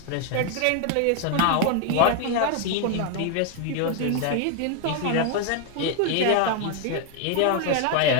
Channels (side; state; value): both; different; correlation 0.01